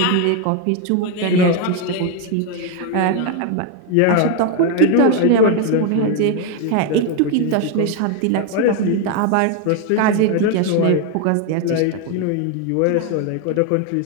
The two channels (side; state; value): both; different; correlation 0.01